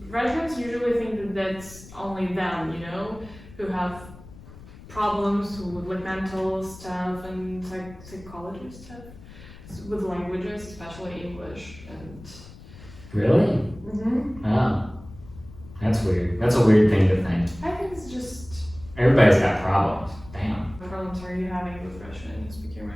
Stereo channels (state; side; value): noise; left; rumble, 18 dB below the sound